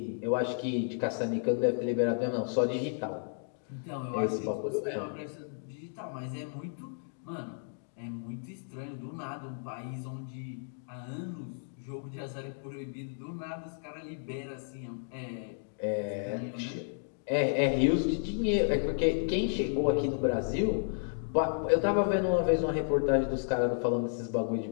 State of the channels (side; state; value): right; silent; digital silence